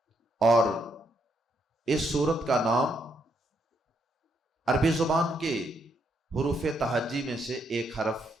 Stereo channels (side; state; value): both; normal; correlation 0.76